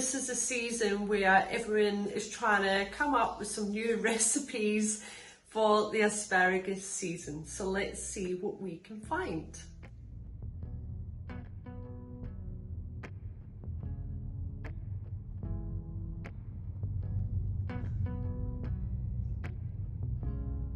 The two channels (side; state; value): both; identical; correlation 1.00